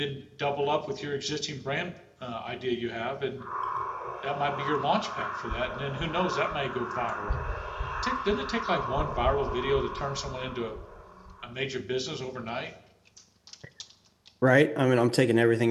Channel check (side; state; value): both; identical; correlation 1.00